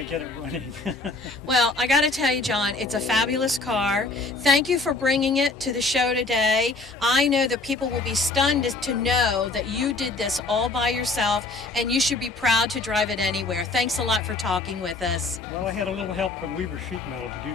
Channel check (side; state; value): right; quieter; 3.3 dB